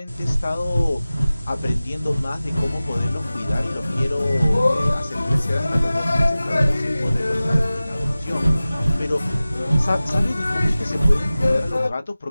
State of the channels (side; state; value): both; inverted; correlation -0.97